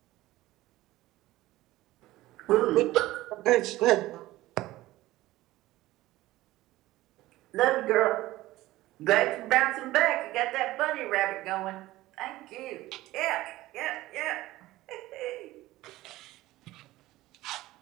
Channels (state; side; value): quieter; left; 17.1 dB